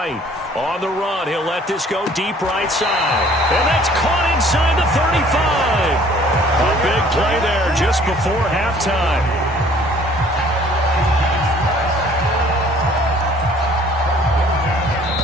On the run, he'll let this go deep right side. And that's caught inside the 35. A big play there just before halftime.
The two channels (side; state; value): both; normal; correlation 0.55